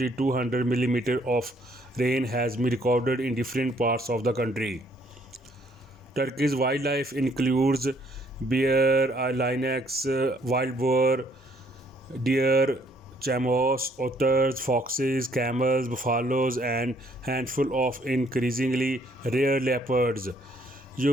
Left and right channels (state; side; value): normal; both; correlation 0.65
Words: millimeters of rain has been recorded in different parts of the country. Turkey's wildlife includes bear, lynx, wild boar, deer, chamois, otters, foxes, camels, buffaloes, and handful of increasingly rare leopards.